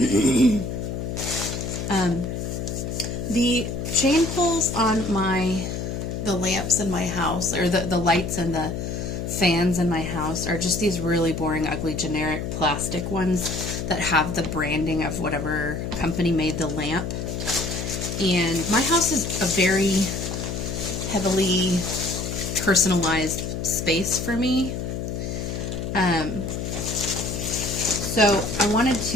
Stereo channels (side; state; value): left; noise; hum, 4 dB below the sound